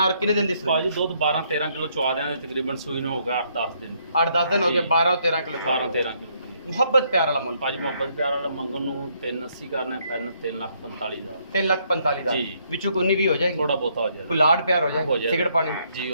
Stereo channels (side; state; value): both; inverted; correlation -0.71